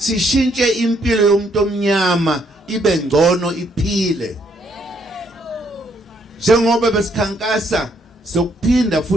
impilo yomuntu omnyama ibe ngcono iphile. Njengoba besikhankasa sokuphinda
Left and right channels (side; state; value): both; normal; correlation 0.70